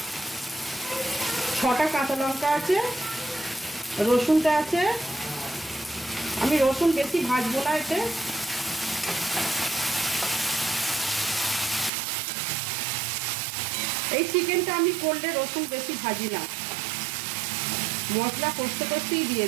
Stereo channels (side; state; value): left; drops out; at 11.9 s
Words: 6টা কাঁচা লঙ্কা আছে, রসুনটা আছে। আমি রসুন বেশি ভাজবো না এতে। এই চিকেনটা আমি করলে রসুন বেশি ভাজি না, মশলা কষতে কষতেই দিয়ে